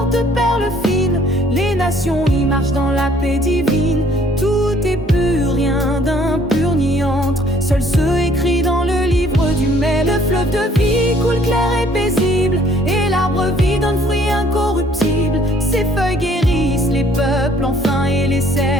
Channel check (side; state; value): both; normal; correlation 0.60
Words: de perles fines, Les nations y marchent dans la paix divine. Tout est pur, rien d'impur ni entre. Seul ceux écrits dans le livre du mai. Le fleuve de vie coule clair et paisible, et l'arbre vie donne fruit incorruptible. Ses feuilles guérissent les peuples enfin, et les